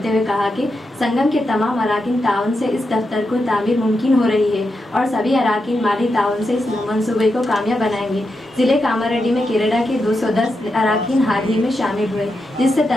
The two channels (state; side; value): normal; both; correlation 0.86